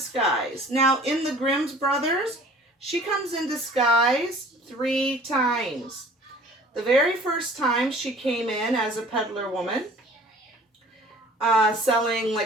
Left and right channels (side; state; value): both; normal; correlation 0.49